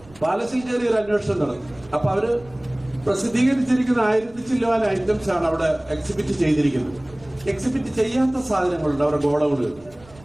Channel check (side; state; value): right; noise; rumble, 24 dB below the sound